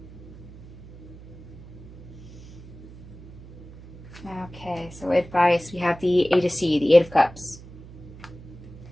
Okay, so advice. We have the 8 of C, the 8 of Cups.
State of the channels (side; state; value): right; noise; hum, 17 dB below the sound